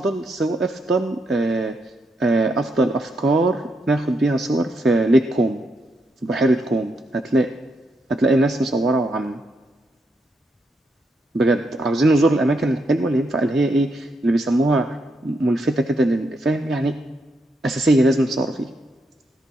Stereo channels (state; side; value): normal; both; correlation 0.80